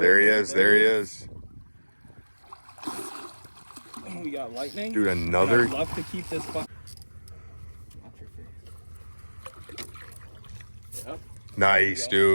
he is. There he is. We got lightning. Dude, another. I'd love to keep this. Watch your face. Yep. Nice,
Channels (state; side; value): inverted; both; correlation -1.00